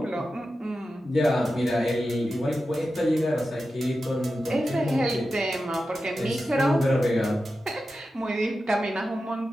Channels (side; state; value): both; normal; correlation 0.92